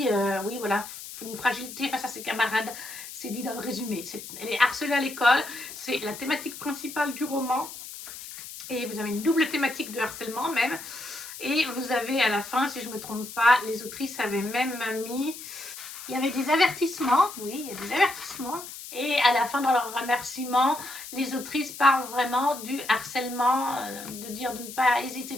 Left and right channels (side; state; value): left; noise; hiss, 12 dB below the sound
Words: oui, voilà, une fragilité face à ses camarades. C'est dit dans le résumé. Elle est harcelée à l'école. C'est la thématique principale du roman. Et vous avez une double thématique de harcèlement même. Et vous avez à la fin, si je ne me trompe pas, les autrices avaient même mis... Il y avait des avertissements, oui, il y a des avertissements. Et à la fin, dans leur remerciement, les autrices parlent vraiment du harcèlement, de dire de ne pas hésiter